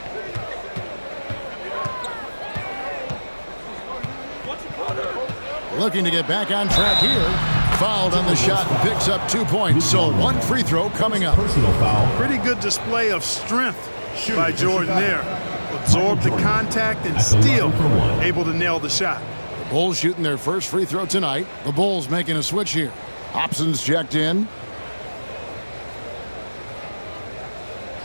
Looking to get back on track here. Fouled on the shot and picks up 2 points. So one free throw coming up. Personal foul. Pretty good display of strength by Jordan there. Absorbed the contact and still able to nail the shot. The Bulls shooting their first free throw tonight. The Bulls making a switch here. Hobson's checked in.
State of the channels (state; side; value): inverted; both; correlation -1.00